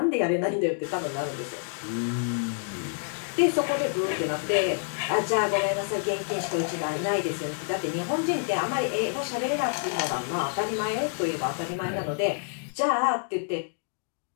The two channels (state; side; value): silent; right; digital silence